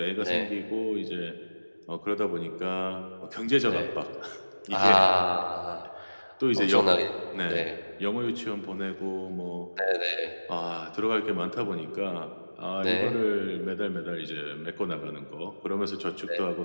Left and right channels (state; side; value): inverted; both; correlation -1.00